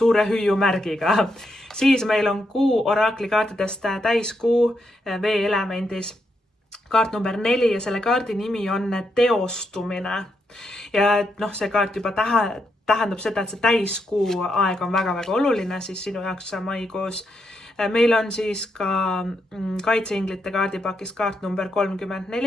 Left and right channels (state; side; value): normal; both; correlation 0.80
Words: hüüumärgiga. Siis meil on kuu oraklikaartidest täiskuu veeelemendis. Kaart number 4 ja selle kaardi nimi on teostumine. Ja see kaart juba tähendab seda, et see täiskuu aeg on väga-väga oluline siis sinu jaoks maikuus. Meil on siis ka kaitseinglite kaardipakis kaart number